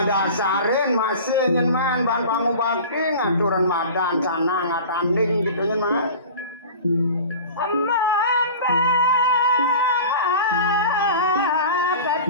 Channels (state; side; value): inverted; both; correlation -0.37